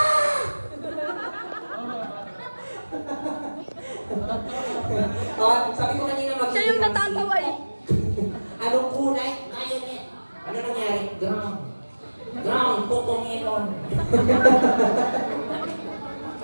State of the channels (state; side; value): inverted; both; correlation -1.00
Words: Sabi ko kanina Siya yung natatawa eh. Anong kulay? Ayun eh. Ano nangyari? Ground. Ground, kukumilon.